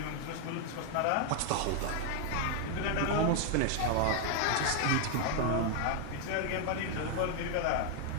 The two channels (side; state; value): both; different; correlation 0.00